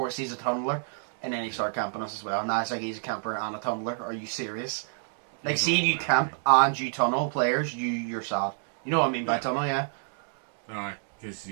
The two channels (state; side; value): silent; left; digital silence